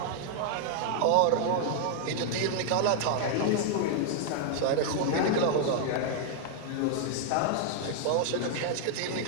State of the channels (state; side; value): different; both; correlation 0.00